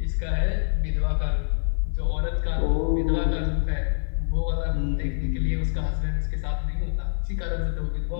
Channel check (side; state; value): right; silent; digital silence